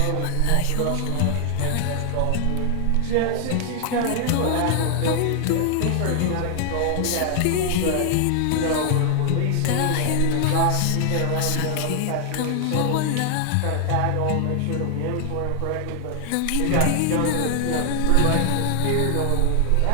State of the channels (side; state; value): both; different; correlation 0.00